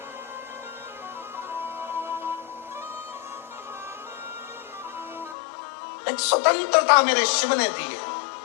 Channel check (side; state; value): right; drops out; at 5.4 s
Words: एक स्वतंत्रता मेरे शिव ने दी है,